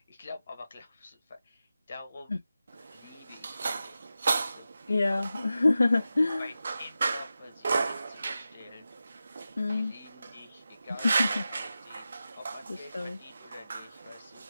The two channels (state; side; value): inverted; both; correlation -0.92